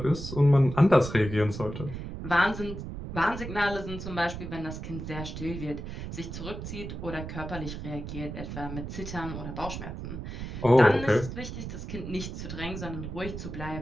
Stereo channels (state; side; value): noise; right; rumble, 8 dB below the sound